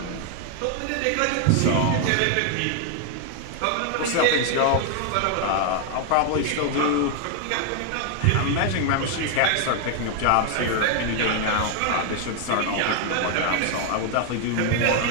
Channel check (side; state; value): both; different; correlation 0.00